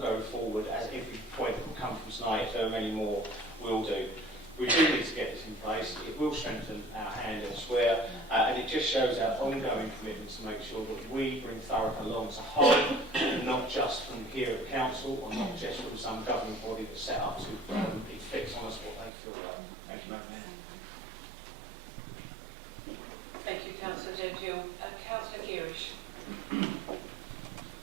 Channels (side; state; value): left; drops out; at 19.1 s